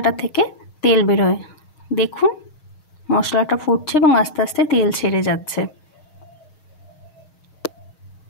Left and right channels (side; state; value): right; late; 6.4 ms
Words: থেকে তেল বেরোয়। দেখুন মশলাটা ফুটছে এবং আস্তে আস্তে তেল ছেড়ে যাচ্ছে।